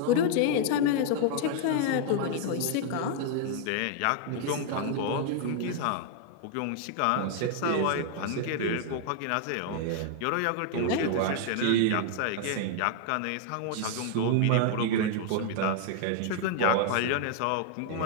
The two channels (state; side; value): different; both; correlation 0.00